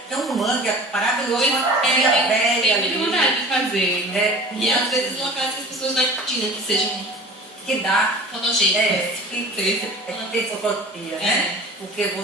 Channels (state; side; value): normal; both; correlation 0.40